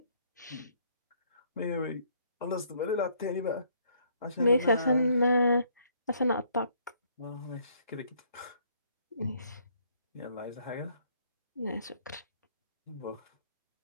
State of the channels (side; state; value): both; inverted; correlation -0.66